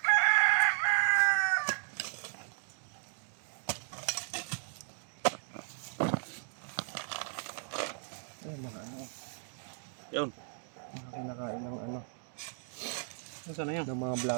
Ay, mga ano, Yun. mga kinakain ng ano, Nasaan na yun? ng mga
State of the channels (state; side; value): silent; left; 54 dB below the other